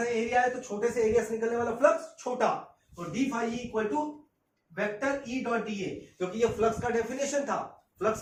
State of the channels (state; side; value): identical; both; correlation 1.00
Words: एरिया है तो छोटे से एरिया से निकलने वाला फ्लक्स छोटा, तो D phi equal to vector E dot D A, क्योंकि ये फ्लक्स का डेफिनेशन था। फ्लक्स